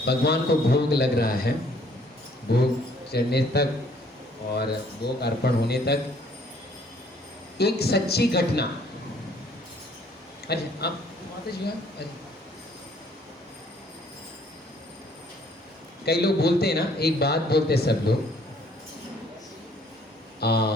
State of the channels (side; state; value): both; normal; correlation 0.61